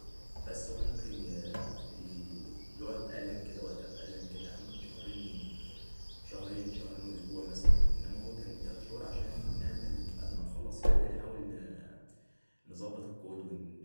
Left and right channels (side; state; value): both; inverted; correlation -1.00